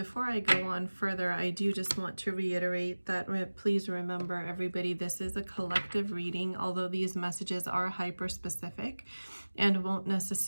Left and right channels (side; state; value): both; inverted; correlation -1.00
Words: I go on further, I do just want to reiterate that please remember, everybody, this is a collective reading, although these messages are hyper-specific and won't